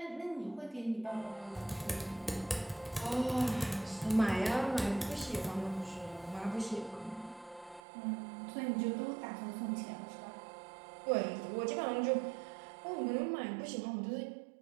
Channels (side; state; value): left; drops out; at 7.8 s